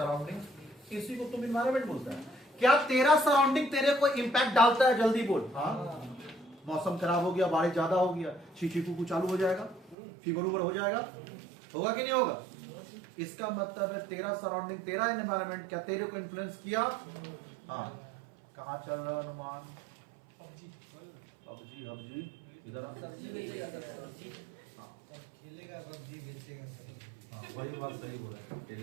इसी को तुम एनवायरमेंट बोलता है। क्या तेरा सराउंडिंग तेरे को इंपैक्ट डालता है? जल्दी बोल। हाँ, मौसम खराब हो गया, बारिश ज्यादा हो गया, शीशी कुकू चालू हो जाएगा, फीवर उवर हो जाएगा, होगा कि नहीं होगा? इसका मतलब है तेरा सराउंडिंग, तेरा एनवायरमेंट क्या तेरे को इन्फ्लुएंस किया? हाँ। कहाँ चल रहा है अनुमान? पबजी हबजी इधर खेलेगा पबजी, बेचेगा सब्जी। हाँ वही बात सही बोला है,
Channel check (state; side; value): drops out; left; at 10.0 s